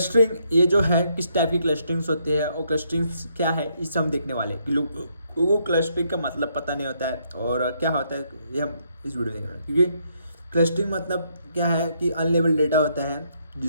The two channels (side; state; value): both; inverted; correlation -0.73